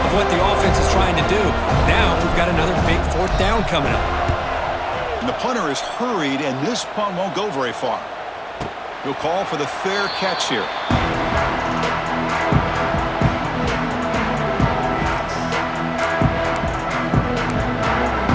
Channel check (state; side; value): identical; both; correlation 1.00